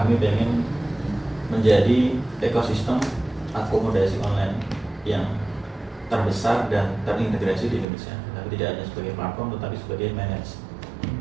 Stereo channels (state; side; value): drops out; left; at 7.9 s